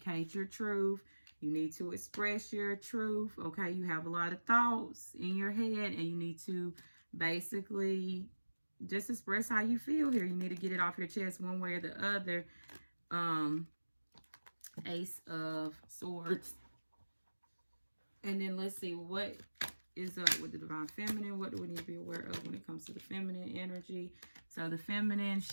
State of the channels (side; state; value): both; inverted; correlation -1.00